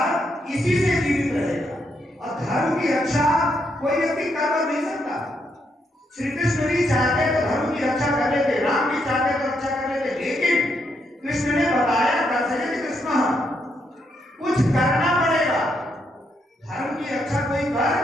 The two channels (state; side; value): normal; both; correlation 0.78